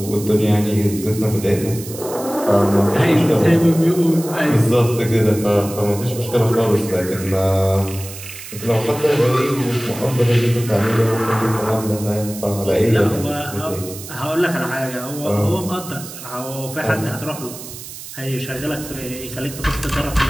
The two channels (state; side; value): noise; right; hiss, 13 dB below the sound